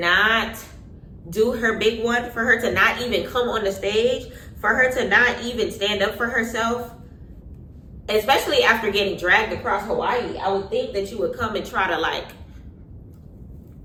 do her big one, for her to not even come on the stage, for her to not even stand up for herself, especially after getting dragged across Hawaii, I would think that you would come and try to like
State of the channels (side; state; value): both; identical; correlation 1.00